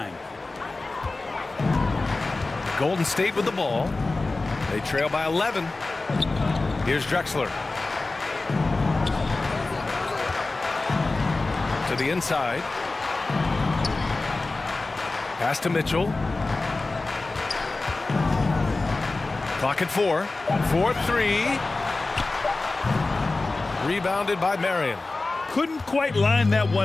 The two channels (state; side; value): quieter; right; 3.4 dB